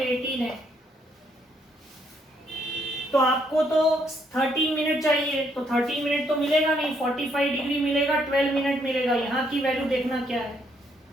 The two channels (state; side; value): normal; both; correlation 0.71